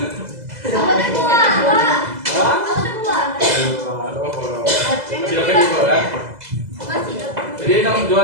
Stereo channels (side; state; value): left; late; 2.0 ms